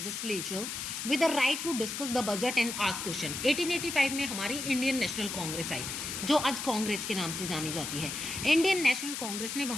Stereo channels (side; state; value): left; noise; hiss, 5 dB below the sound